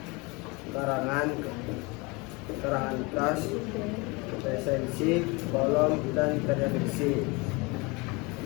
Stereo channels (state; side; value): quieter; right; 26.6 dB